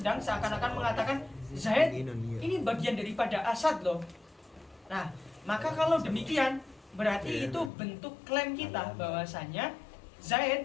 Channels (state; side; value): drops out; right; at 7.7 s